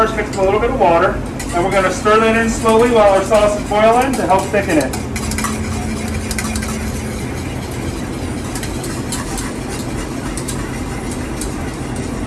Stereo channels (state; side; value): identical; both; correlation 1.00